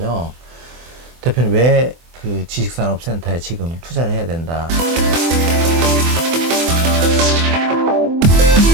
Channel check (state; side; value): late; left; 24 ms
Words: 대표님 왜 그 지식산업센터에 지금 투자를 해야 된다.